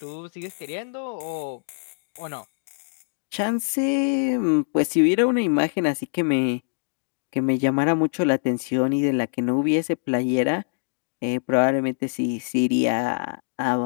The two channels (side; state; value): right; silent; digital silence